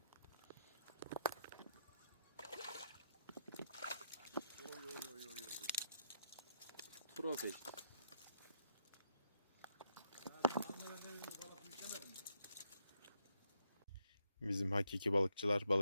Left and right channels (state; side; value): inverted; both; correlation -0.77